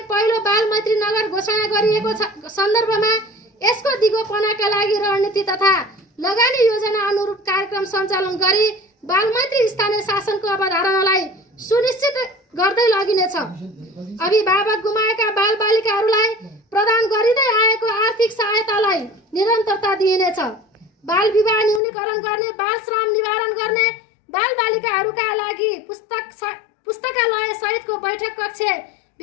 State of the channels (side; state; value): right; drops out; at 21.8 s